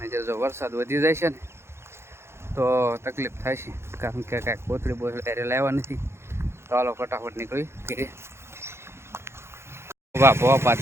જો વરસાદ વધી જાય છે ને તો તકલીફ થાય છે, કારણ કે કાંઈક કોથળી ત્યારે લાવવા નથી. તો હાલો ફટાફટ નીકળી ઘરે. વાહ ભવા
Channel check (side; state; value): left; late; 0.12 ms